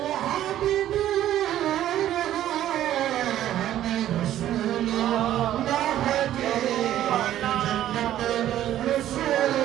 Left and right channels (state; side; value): quieter; left; 12.4 dB